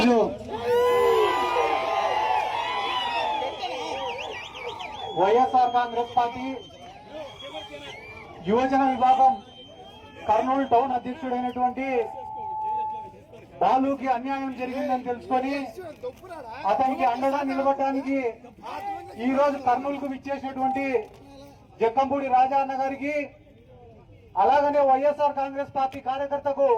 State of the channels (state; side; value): identical; both; correlation 1.00